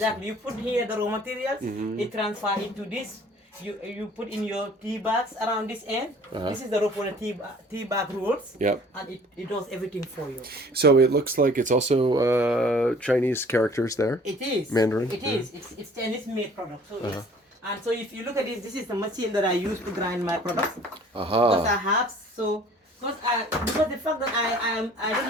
You put here the raw materials, it transfer into this. You put in your tea bags around this end. This is the rope for the tea bag rolls. Yep. And it does everything for you. So it looks like it's also Chinese characters there. It is. Mandarin. It is. It's Chinese made product. So yes. And so if you look at this is the machine that I use to grind my products. Because I have because the fact that I don't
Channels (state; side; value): normal; both; correlation 0.52